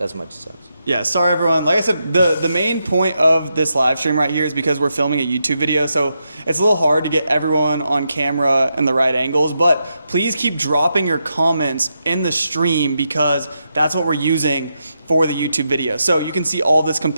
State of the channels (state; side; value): inverted; both; correlation -0.84